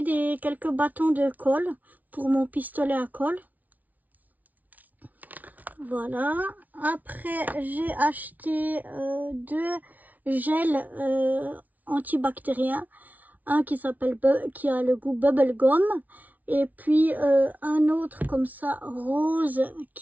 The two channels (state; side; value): late; left; 0.075 ms